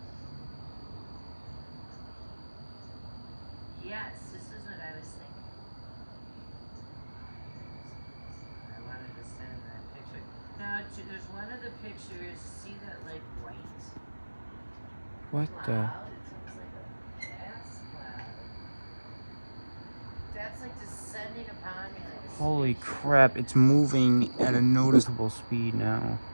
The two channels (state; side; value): inverted; both; correlation -1.00